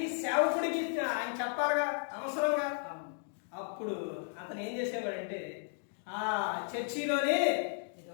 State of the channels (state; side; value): silent; right; 55 dB below the other